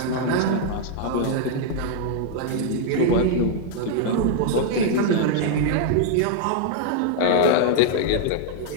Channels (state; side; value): different; both; correlation 0.00